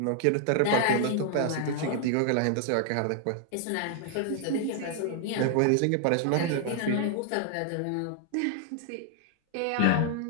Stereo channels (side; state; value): both; different; correlation 0.00